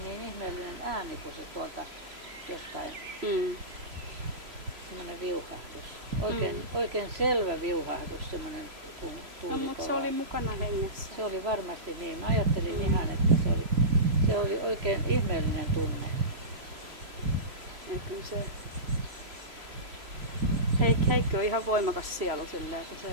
ihmeellinen ääni, kun se tuolta jostain, semmoinen viuhahdus. Oikein selvä viuhahdus, semmoinen kuin tuuli No, mutta se oli mukana hengessä. Se oli varmasti niin. Mä ajattelin ihan, että se oli oikein ihmeellinen tunne. Ja kyllä se... Heikki on ihan voimakas sielu silleen, että se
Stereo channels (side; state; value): left; late; 3.0 ms